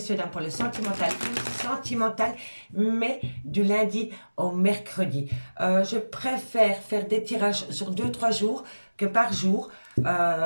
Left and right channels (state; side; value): inverted; both; correlation -1.00